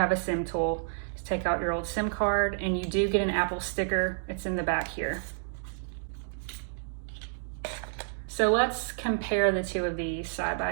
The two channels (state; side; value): silent; left; digital silence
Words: a SIM tool. Just take out your old SIM card, and you do get an Apple sticker. It's in the back here. So let's compare the two of these side